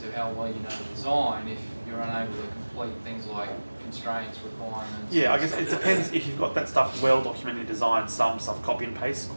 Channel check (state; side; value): inverted; both; correlation -1.00